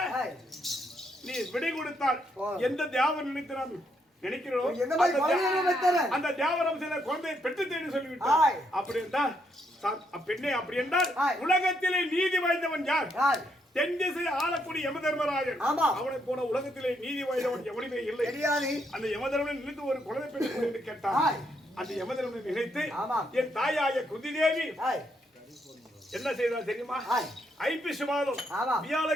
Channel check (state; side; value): normal; both; correlation 0.76